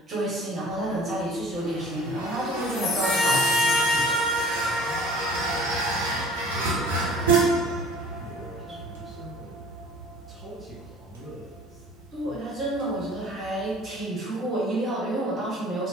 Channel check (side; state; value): both; normal; correlation 0.47